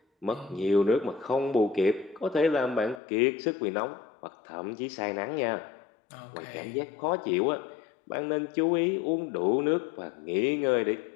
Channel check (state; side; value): drops out; right; at 3.0 s